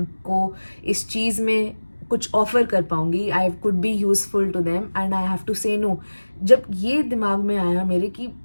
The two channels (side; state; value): both; inverted; correlation -1.00